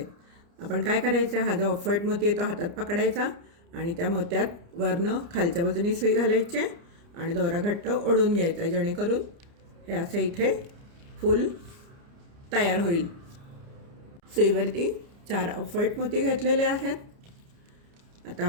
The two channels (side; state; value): left; late; 29 ms